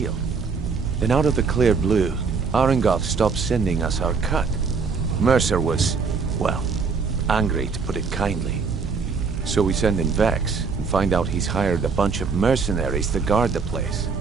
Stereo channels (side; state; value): left; quieter; 5.1 dB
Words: Then out of the clear blue, Arengoth stopped sending us our cut. Mercer was, well, angry to put it kindly. So we send in Vex and find out he's hired a bunch of mercenaries to guard the place.